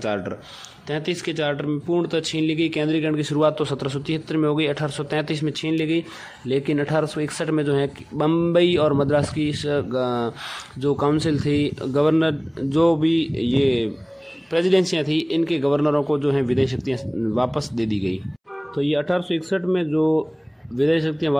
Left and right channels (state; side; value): identical; both; correlation 1.00